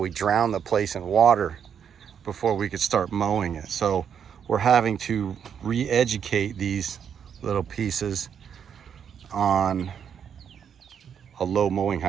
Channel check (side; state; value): left; quieter; 7.9 dB